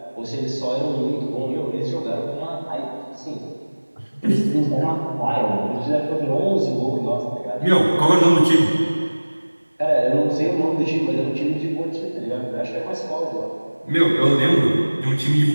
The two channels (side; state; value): both; inverted; correlation -1.00